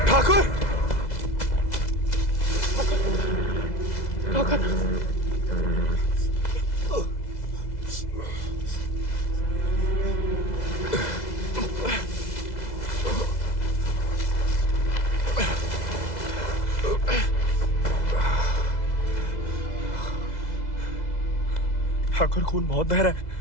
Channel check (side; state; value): right; late; 2.0 ms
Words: ठाकुर, ठाकुर, ठाकुर खून बहुत बह रहा है।